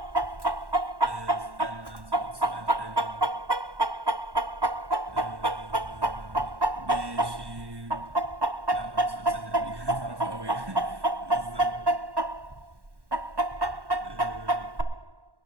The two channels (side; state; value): left; late; 1.1 ms